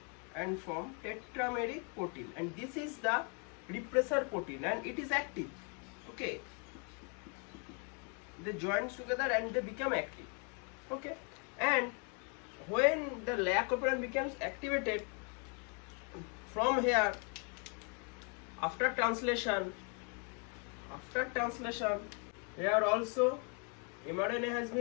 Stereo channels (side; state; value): right; quieter; 37.5 dB